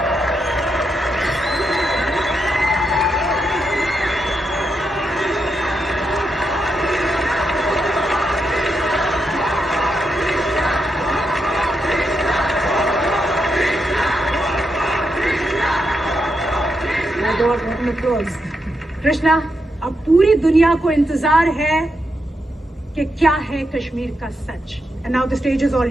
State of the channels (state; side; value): normal; both; correlation 0.83